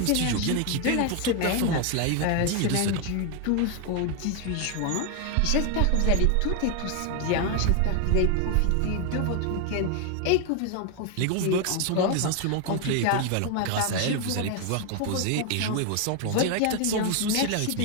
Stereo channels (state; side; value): different; both; correlation 0.01